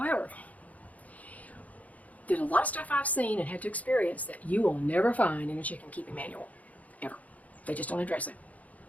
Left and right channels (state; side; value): late; right; 0.072 ms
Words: there's a lot of stuff I've seen and had to experience that you will never find in a chicken keeping manual, ever. They just don't address it.